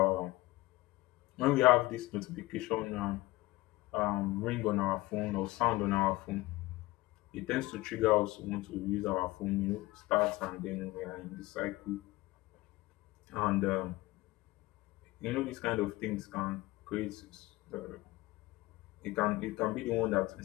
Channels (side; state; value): right; quieter; 19.7 dB